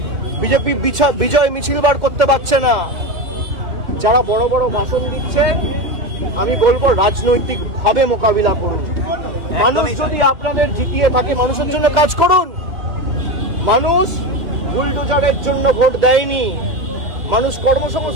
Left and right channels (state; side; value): late; left; 2.1 ms